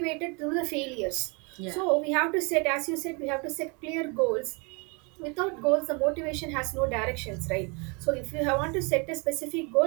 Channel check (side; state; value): left; quieter; 31.6 dB